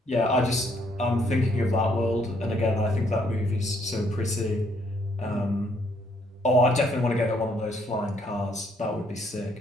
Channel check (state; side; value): normal; both; correlation 0.69